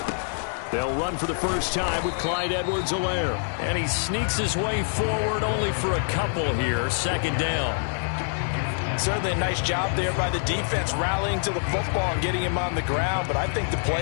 They'll run for the first time with Clyde Edwards-Helaire. And he sneaks his way forward only for a couple here. Second down. Certainly a nice job there by the defense rallying to the football and getting him on the ground. But I think the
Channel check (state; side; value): silent; right; 60 dB below the other